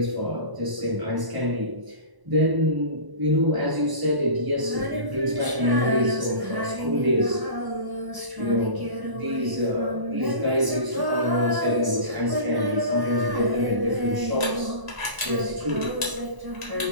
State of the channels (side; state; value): left; late; 1.0 ms